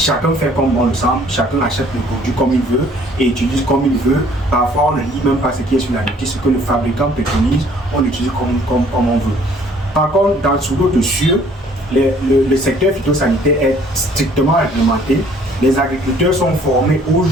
fait comme bon le semble, chacun achète le produit comme il veut et utilise comme il veut. Parfois, on ne lit même pas ce qui est sur la notice, ce que le fabricant préconise, on l'utilise comme on veut. Par contre, sous d'autres cieux, le secteur phytosanitaire est strictement réglementé Les agriculteurs sont formés au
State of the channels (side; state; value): both; normal; correlation 0.58